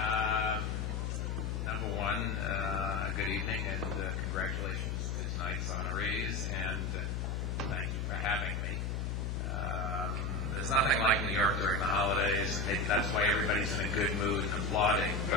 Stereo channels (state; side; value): noise; left; hum, 1 dB below the sound